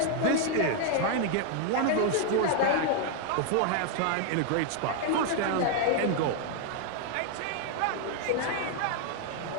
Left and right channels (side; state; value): both; different; correlation 0.00